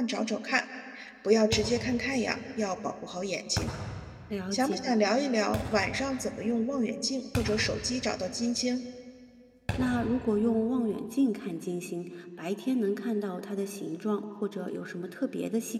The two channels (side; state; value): both; identical; correlation 1.00